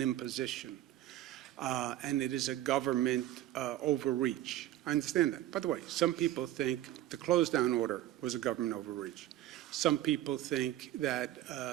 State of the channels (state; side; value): quieter; left; 13.8 dB